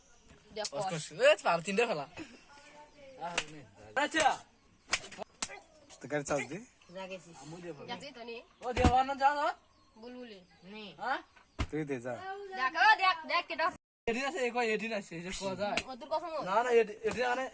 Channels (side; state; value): both; identical; correlation 1.00